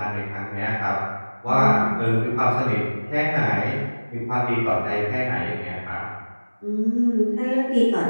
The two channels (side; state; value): both; inverted; correlation -1.00